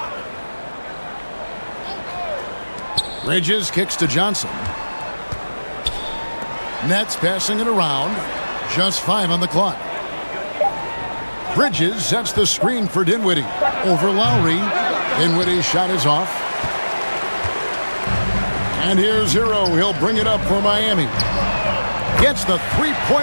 Bridges kicks to Johnson. Nets passing it around. Just 5 on the clock. Bridges sets the screen for Dinwiddie. Over Lowry. Dinwiddie's shot is off. And here's Hero. He'll bring it up for Miami. Gets the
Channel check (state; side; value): inverted; both; correlation -1.00